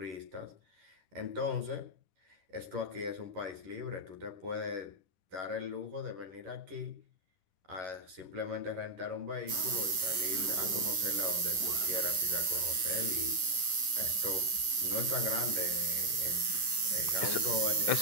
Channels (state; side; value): late; left; 10 ms